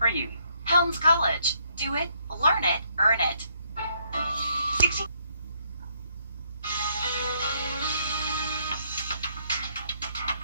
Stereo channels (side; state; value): both; inverted; correlation -0.71